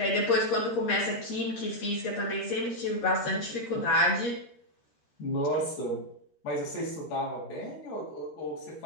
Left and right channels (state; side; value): late; right; 13 ms